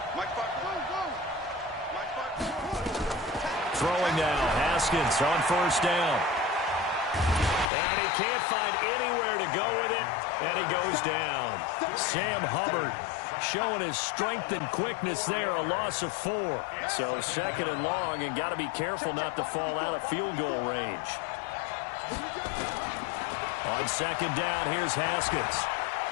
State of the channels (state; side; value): drops out; right; at 7.7 s